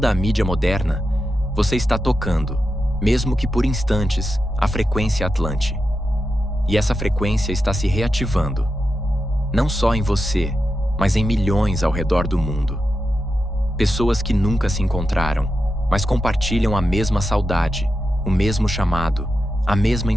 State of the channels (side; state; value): both; normal; correlation 0.89